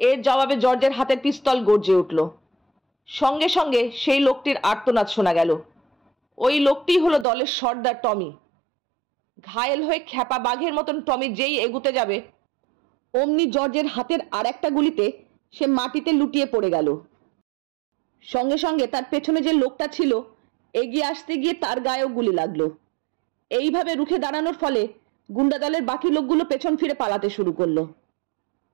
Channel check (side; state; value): left; drops out; at 7.2 s